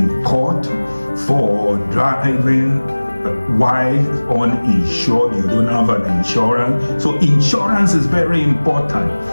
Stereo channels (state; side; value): inverted; both; correlation -1.00